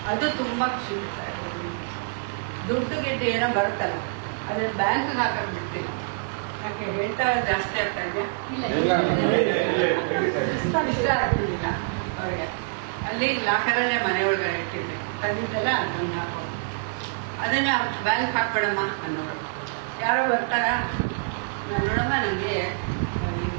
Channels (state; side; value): silent; left; 61 dB below the other